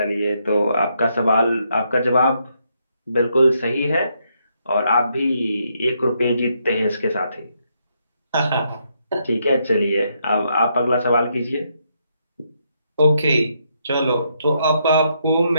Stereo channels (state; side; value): inverted; both; correlation -0.77